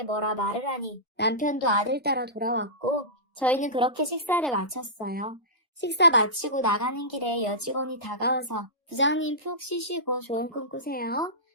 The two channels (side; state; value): both; normal; correlation -0.18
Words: 뭐라 말을 하니 남편도 아들 따라 돌아왔고 저희는 그렇게 식사를 마쳤어요. 식사 마치고 나가는 길에 여직원이 다가와서 부장님 푹 쉬시고 좋은 꿈 꾸세요.